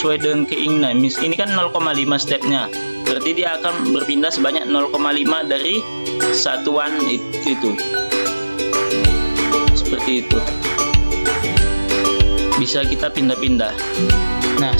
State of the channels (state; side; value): inverted; both; correlation -1.00